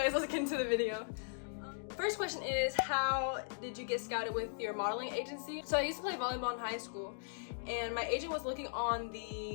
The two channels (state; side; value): silent; right; digital silence